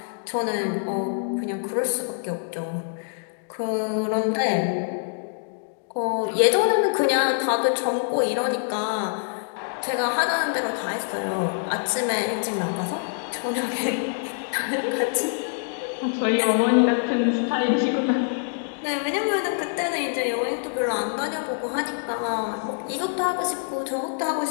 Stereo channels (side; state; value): right; silent; digital silence